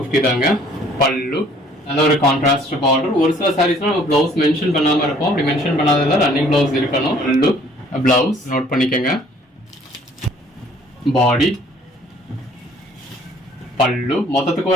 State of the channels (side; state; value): both; normal; correlation 0.58